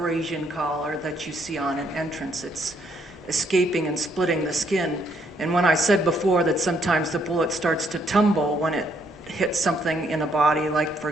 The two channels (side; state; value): both; normal; correlation 0.70